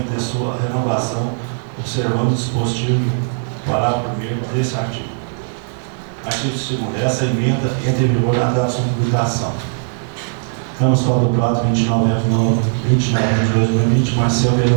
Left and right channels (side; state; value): left; silent; 67 dB below the other